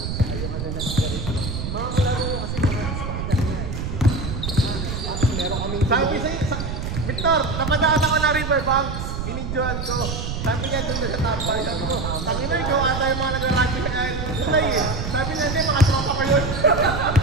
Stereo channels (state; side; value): noise; right; rumble, 4 dB below the sound